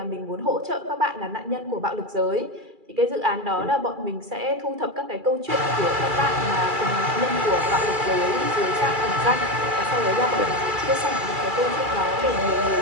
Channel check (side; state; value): left; late; 2.3 ms